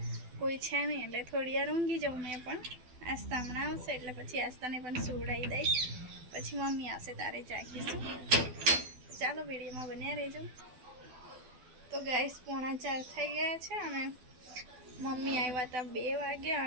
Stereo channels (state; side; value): late; left; 12 ms